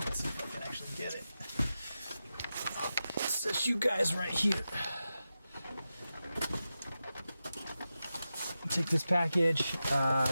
Let's see if I can actually get it. It says you guys right here. Take this package.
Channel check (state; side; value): inverted; both; correlation -0.91